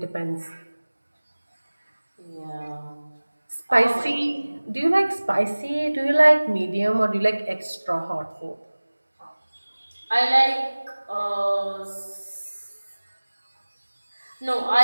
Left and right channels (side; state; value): both; inverted; correlation -1.00